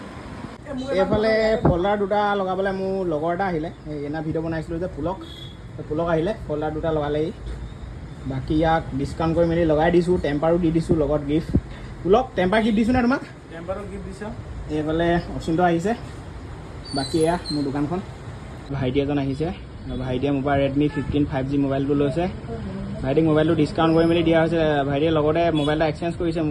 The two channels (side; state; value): both; identical; correlation 1.00